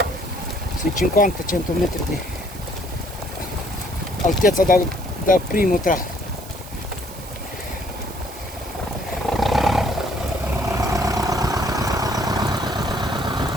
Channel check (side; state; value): right; noise; hiss, 17 dB below the sound